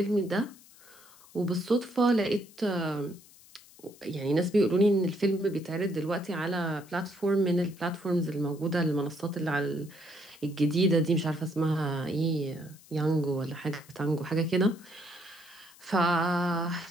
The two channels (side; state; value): left; noise; hiss, 24 dB below the sound